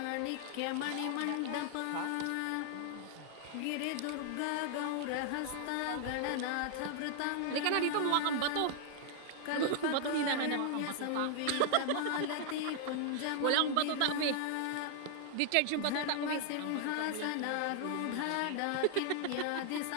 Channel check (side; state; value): both; different; correlation 0.00